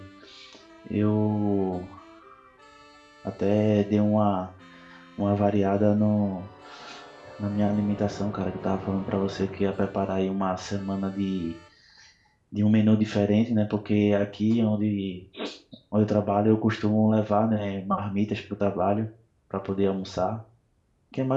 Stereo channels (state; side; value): identical; both; correlation 1.00